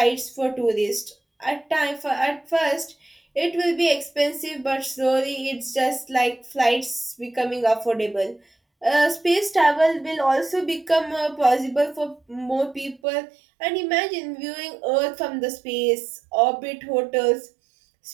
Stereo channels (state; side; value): drops out; left; at 13.0 s